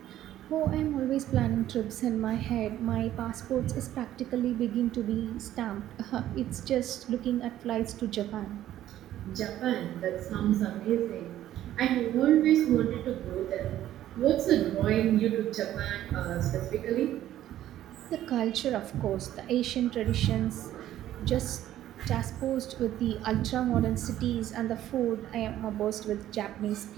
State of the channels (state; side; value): quieter; left; 12.8 dB